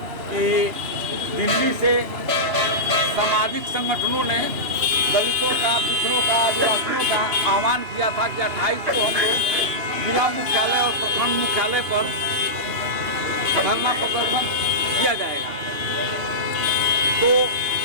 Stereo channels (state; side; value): late; left; 3.0 ms